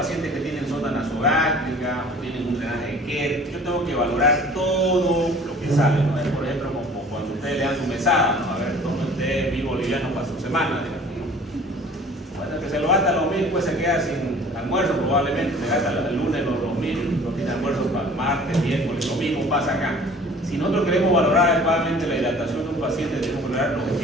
que tienen sonda nasogástrica o tienen un drenaje de Kerr. Yo tengo que valorar todo lo que sale, ¿no? Es, por ejemplo, como cuando ustedes le dan su mesada, ¿no? A ver, tome usted mi boliviano para su semana, digamos, ¿no? Bueno, que se lo gasta los 1.000, pues se queda sin almuerzo probablemente, se gasta el lunes los 2.000, no tiene almuerzo para el martes, miércoles, lo mismo pasa acá. Si nosotros queremos valorar adecuadamente la hidratación de un paciente, debemos valorar los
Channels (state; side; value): normal; both; correlation 0.48